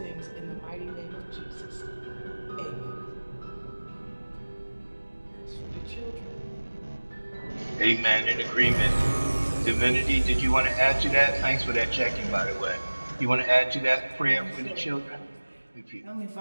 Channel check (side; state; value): both; inverted; correlation -1.00